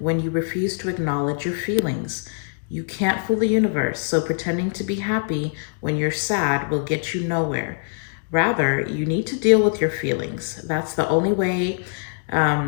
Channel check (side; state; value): right; silent; digital silence